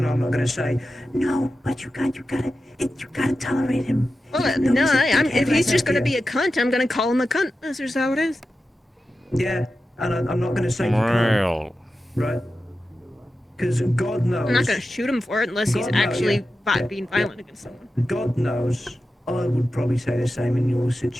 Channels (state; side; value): normal; both; correlation 0.92